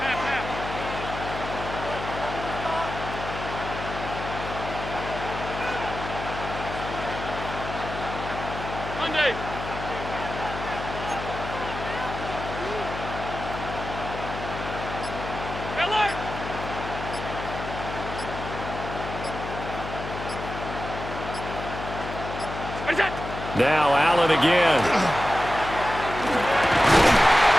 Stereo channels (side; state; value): left; noise; hum, 8 dB below the sound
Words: Now Allen again.